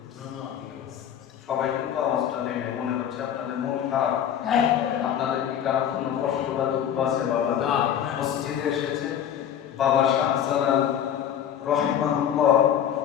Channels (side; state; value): right; quieter; 9.6 dB